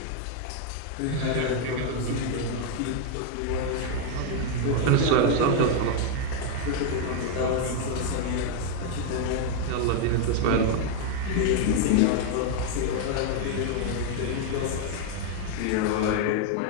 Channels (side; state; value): both; different; correlation 0.00